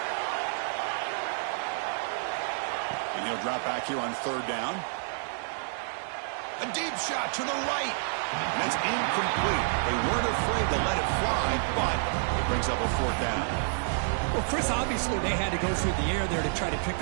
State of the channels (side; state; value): left; silent; digital silence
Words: He'll drop back here on 3rd down. A deep shot to the right. And that's incomplete. They weren't afraid to let it fly, but it brings up a 4th down. Well, Chris, obviously they had to go through the air there to try to pick